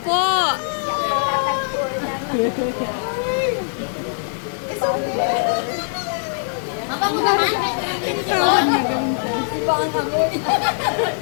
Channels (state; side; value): silent; right; 65 dB below the other